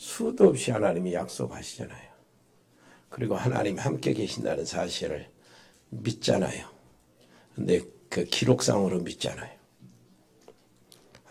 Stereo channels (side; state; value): both; identical; correlation 1.00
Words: 없이 하나님이 약속하시잖아요. 그리고 하나님이 함께 계신다는 사실을 믿잖아요. 근데 그 기록상으로 믿잖아요.